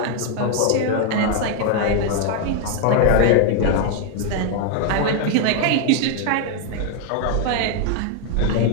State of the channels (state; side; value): different; both; correlation 0.00